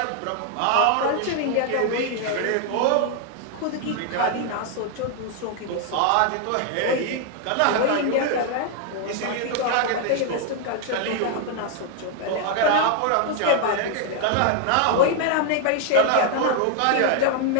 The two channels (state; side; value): different; both; correlation 0.00